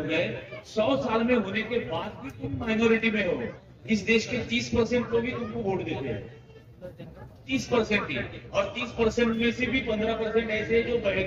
गए, 100 साल में होने के बाद भी तुम माइनॉरिटी में हो। इस देश के 30% लोग भी तुमको वोट देते हैं, 30% ही, और 30% में से भी 15% ऐसे जो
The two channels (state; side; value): identical; both; correlation 1.00